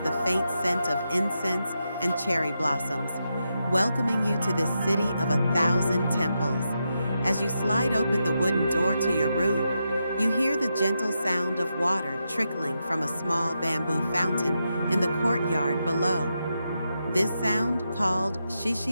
faint scent of incense and cherry blossoms, welcoming you to this city of 1,000 temples. As you slide open the wooden door to your room, you hear the gentle sound of water trickling from a small bamboo fountain in the courtyard below. This sound, called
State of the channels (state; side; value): inverted; both; correlation -0.86